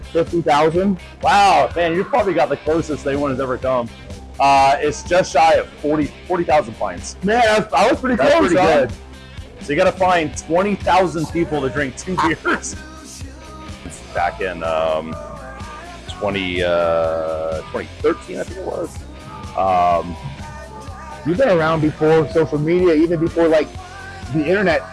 50,000. Wow, man, you probably got the closest anyone has ever come. It's just shy of 40,000 pints. Man, I was pretty That's close. pretty Huh? good. So you got to find 20,000 people to drink 2 beers. Back in 2013, I think it was. You've been around before social media, even before like the internet.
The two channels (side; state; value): both; identical; correlation 1.00